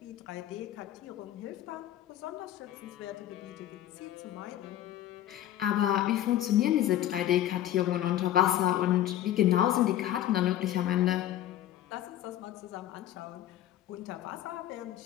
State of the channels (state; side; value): quieter; right; 12.5 dB